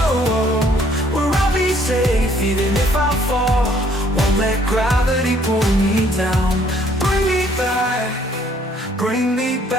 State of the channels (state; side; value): normal; both; correlation 0.63